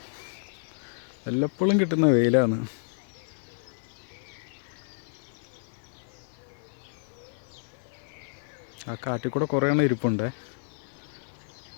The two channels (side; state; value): right; silent; 58 dB below the other